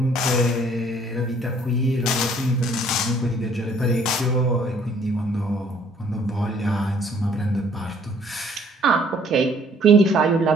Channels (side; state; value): both; normal; correlation 0.60